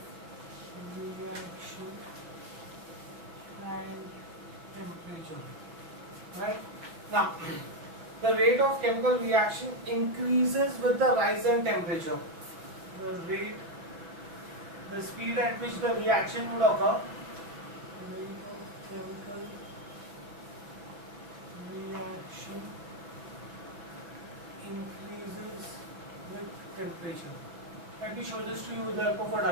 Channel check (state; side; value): late; left; 6.3 ms